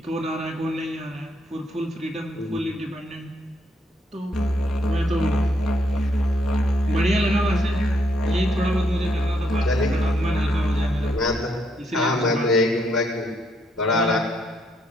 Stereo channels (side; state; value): both; normal; correlation 0.75